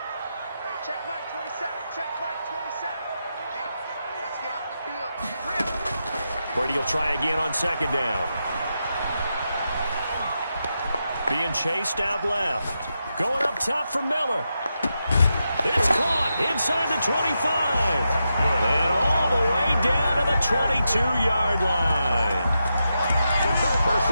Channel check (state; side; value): inverted; both; correlation -0.86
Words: Check Mike 27, check Mike 27. Let's get off the field. Brady will try again on second down. Being chased out left. Going up top for Miller. It's caught inside the 25. And all the way down to the 22-yard line.